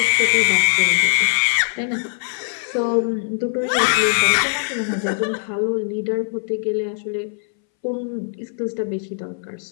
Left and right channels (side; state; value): right; silent; 63 dB below the other